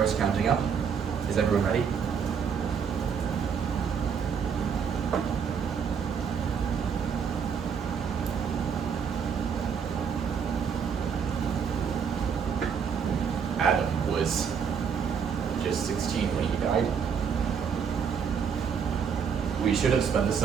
is counting up. Is everyone ready? Adam was just 16 when he died. We should have spent the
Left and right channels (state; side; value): quieter; left; 6.9 dB